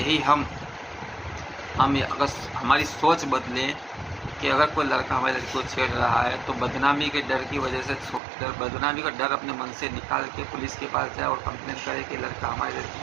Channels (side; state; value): left; drops out; at 8.2 s